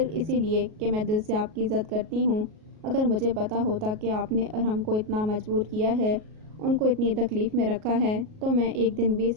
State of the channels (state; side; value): late; left; 37 ms